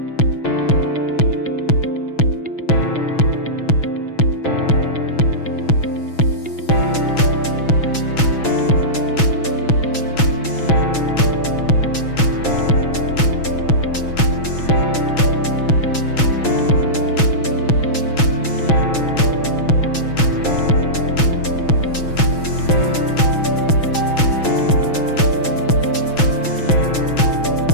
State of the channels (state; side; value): late; right; 6.1 ms